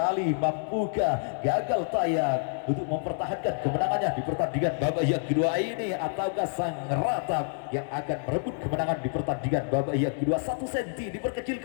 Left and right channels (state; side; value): silent; right; 57 dB below the other